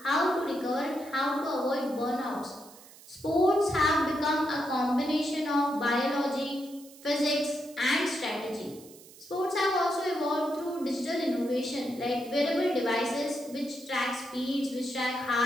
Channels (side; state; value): right; noise; hiss, 21 dB below the sound